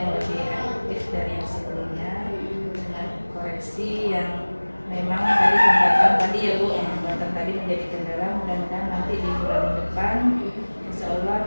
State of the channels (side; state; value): both; inverted; correlation -1.00